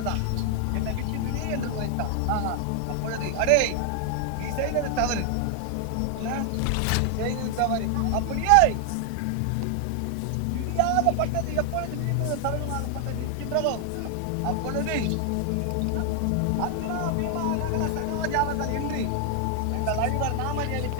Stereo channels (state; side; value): different; both; correlation 0.00